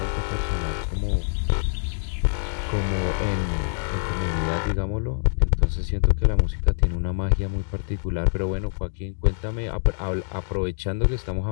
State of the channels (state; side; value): silent; right; digital silence